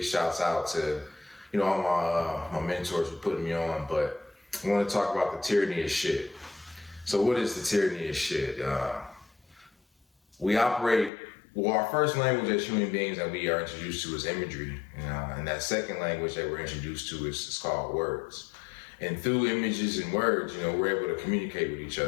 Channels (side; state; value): right; drops out; at 11.1 s